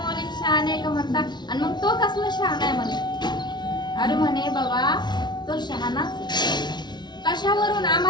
शहाणे का म्हणता. आणि मग तो कसला शहाणा आहे म्हणे. अरे म्हणे बाबा तो शहाणाच. कशावरून?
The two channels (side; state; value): right; late; 0.20 ms